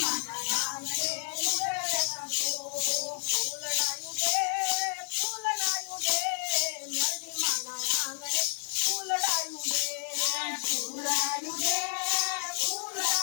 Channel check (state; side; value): silent; right; digital silence